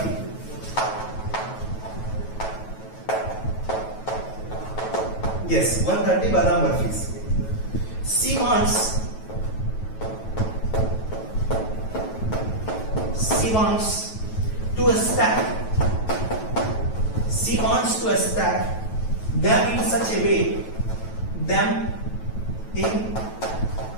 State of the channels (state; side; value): late; right; 9.2 ms